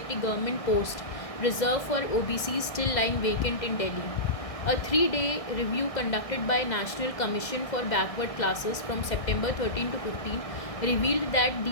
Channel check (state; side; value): late; right; 1.6 ms